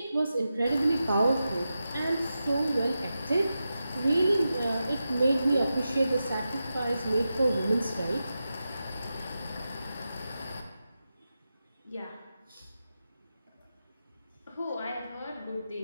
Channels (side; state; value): both; inverted; correlation -0.91